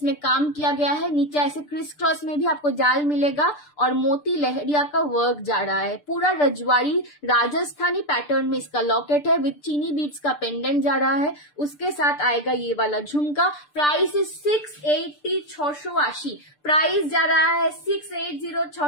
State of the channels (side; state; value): right; late; 6.8 ms